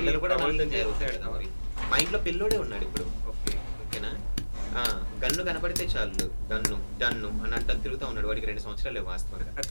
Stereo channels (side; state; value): both; inverted; correlation -1.00